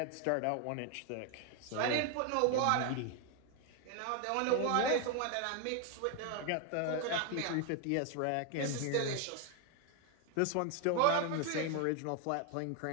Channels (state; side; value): different; both; correlation 0.01